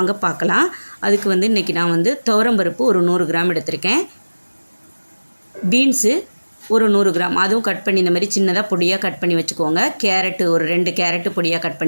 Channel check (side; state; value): both; inverted; correlation -1.00